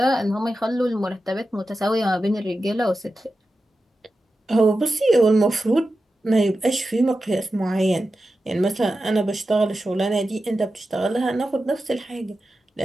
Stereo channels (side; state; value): both; normal; correlation 0.92